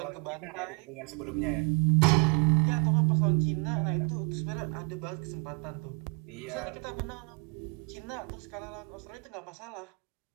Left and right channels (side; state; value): left; quieter; 31.7 dB